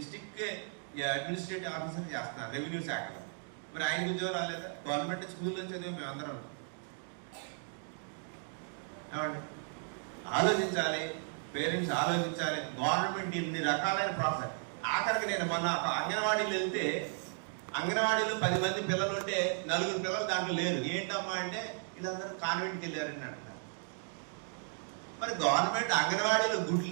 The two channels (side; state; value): left; silent; 54 dB below the other